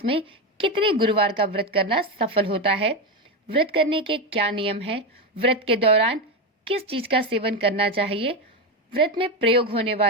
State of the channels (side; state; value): both; normal; correlation 0.12